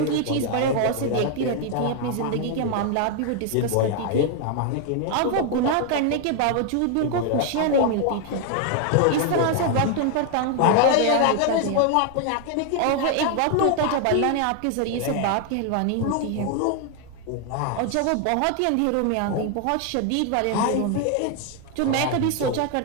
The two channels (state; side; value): different; both; correlation 0.00